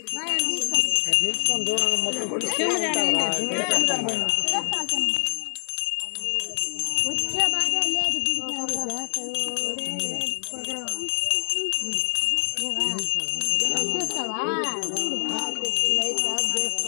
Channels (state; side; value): silent; right; 55 dB below the other